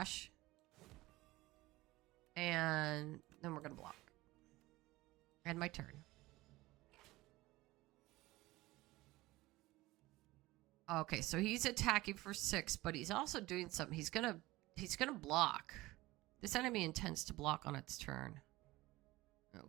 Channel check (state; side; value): quieter; left; 19.1 dB